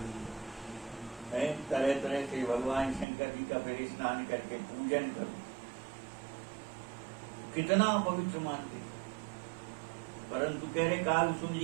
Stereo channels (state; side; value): drops out; left; at 3.1 s